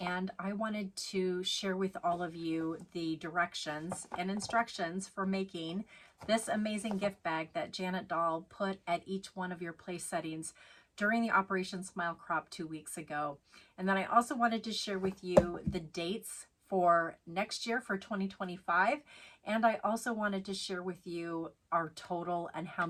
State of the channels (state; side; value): identical; both; correlation 1.00